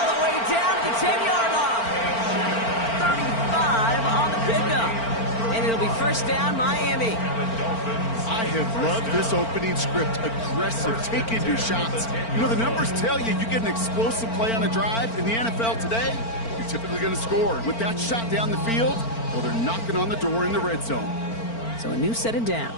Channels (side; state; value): right; late; 4.4 ms